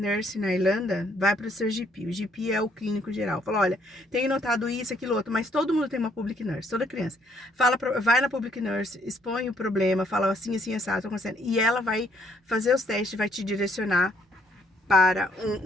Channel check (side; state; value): both; normal; correlation 0.67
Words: na Irlanda, vai para o seu GP. O GP é o clínico geral. Fala, olha, tenho notado isso, aquilo, outro, mas todo mundo tem uma public nurse, toda criança. Vai na public nurse, expõe o problema, fala assim, assim, assado, tô acontecendo. E ela vai fazer os testes, vai te direcionar para